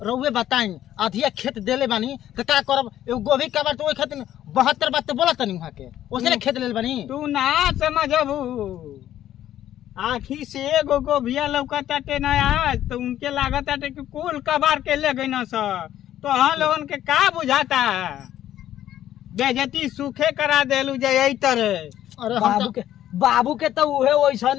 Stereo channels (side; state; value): right; quieter; 12.0 dB